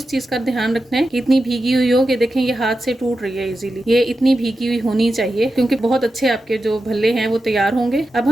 चीज का ध्यान रखना है कि इतनी भीगी हुई हो कि देखें ये हाथ से टूट रही है इजीली। ये इतनी भीगी हुई होनी चाहिए क्योंकि बहुत अच्छे आपके जो भल्ले हैं वो तैयार होंगे। अब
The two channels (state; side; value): normal; both; correlation 0.90